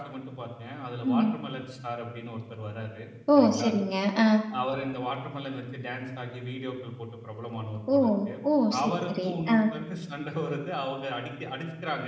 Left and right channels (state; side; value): identical; both; correlation 1.00